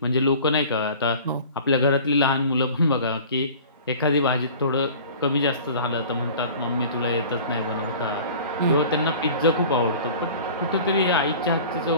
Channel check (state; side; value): inverted; both; correlation -0.43